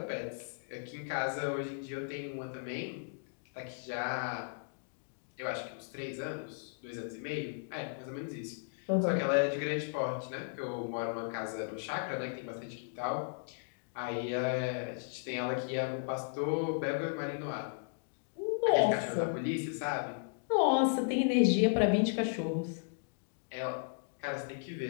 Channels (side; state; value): right; silent; digital silence